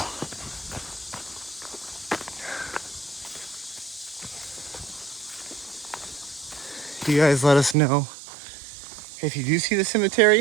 You guys let us know if you do see the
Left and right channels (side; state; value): left; drops out; at 7.8 s